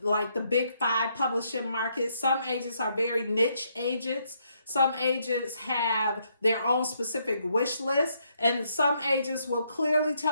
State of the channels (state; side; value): inverted; both; correlation -0.74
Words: like the big 5 publishing markets. Some agents are very niche agents. Some agents have their own specific wish list, and some agents will clearly